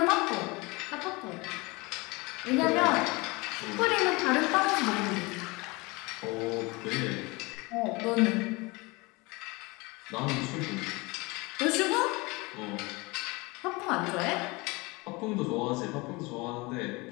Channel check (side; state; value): right; quieter; 25.0 dB